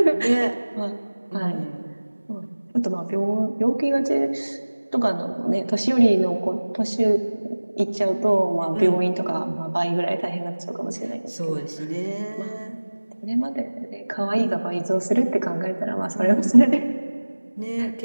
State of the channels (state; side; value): inverted; both; correlation -1.00